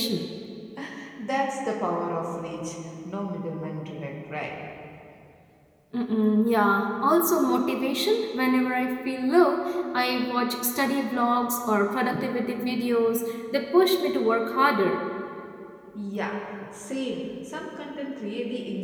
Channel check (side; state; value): both; identical; correlation 1.00